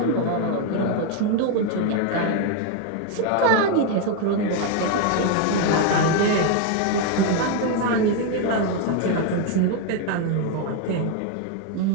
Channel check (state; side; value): different; both; correlation 0.01